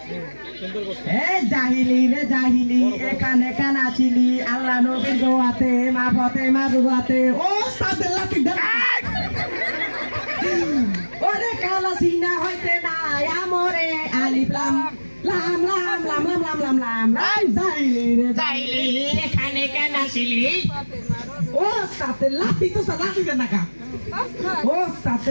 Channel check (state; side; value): inverted; both; correlation -1.00